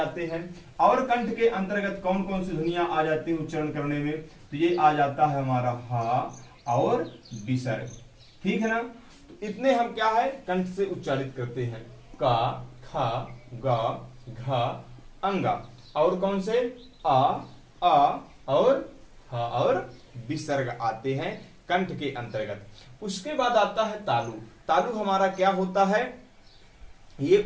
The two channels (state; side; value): identical; both; correlation 1.00